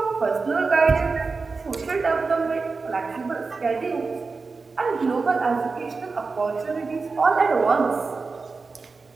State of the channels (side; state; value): left; quieter; 4.3 dB